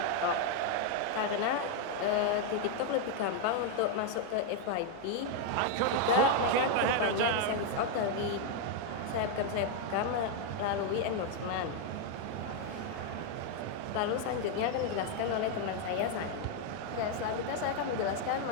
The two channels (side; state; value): both; different; correlation 0.01